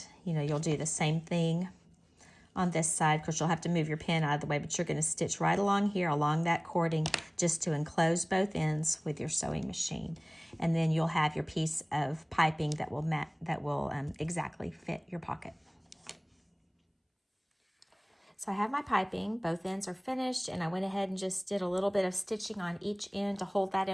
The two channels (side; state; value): both; identical; correlation 1.00